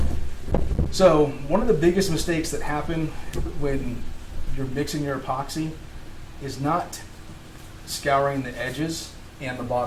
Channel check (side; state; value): both; identical; correlation 1.00